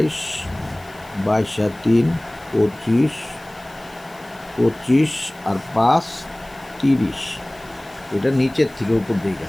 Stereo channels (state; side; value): noise; left; hiss, 26 dB below the sound